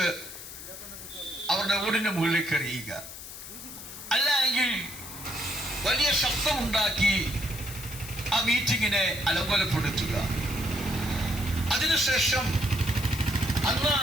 അവരുടെ ഓടിന്റെ മുകളിലേക്ക് എറിയുക, അല്ലെങ്കിൽ വലിയ ശബ്ദമുണ്ടാക്കി ആ മീറ്റിങ്ങിനെ അലങ്കോലപ്പെടുത്തുക. അതിനുശേഷം അന്ന്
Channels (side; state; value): left; noise; hiss, 12 dB below the sound